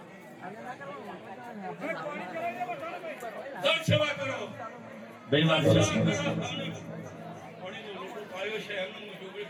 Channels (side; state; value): both; identical; correlation 1.00